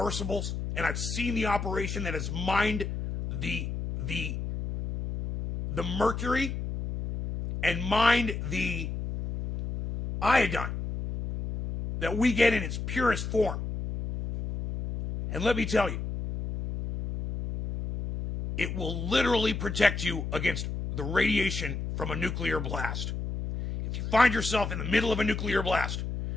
and I've seen the operation that has mined the mercury and mined the iodine that we get in its purest form. And let me tell you, it will literally protect you against the radiation from a nuclear blast. If you find yourself in the middle of a nuclear blast,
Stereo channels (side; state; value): left; noise; hum, 4 dB below the sound